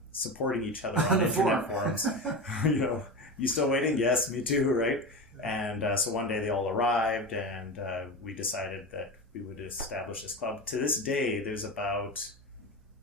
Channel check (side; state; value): both; normal; correlation 0.23